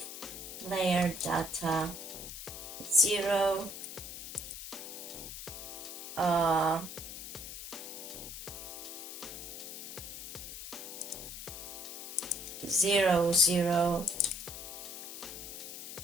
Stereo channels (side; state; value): left; noise; hiss, 9 dB below the sound